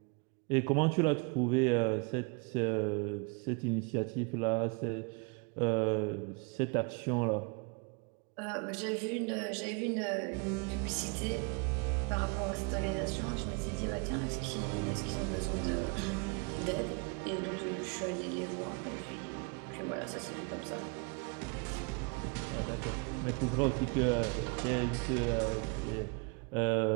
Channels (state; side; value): quieter; left; 32.2 dB